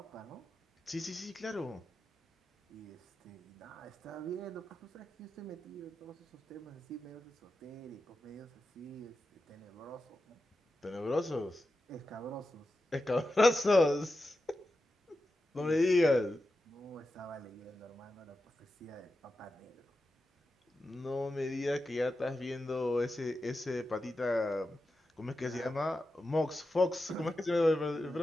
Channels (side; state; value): both; normal; correlation 0.91